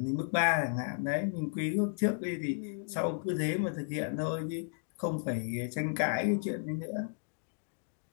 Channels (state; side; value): silent; right; digital silence